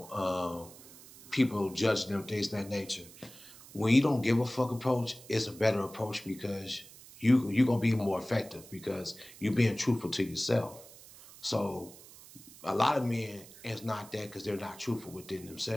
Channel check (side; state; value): right; noise; hiss, 19 dB below the sound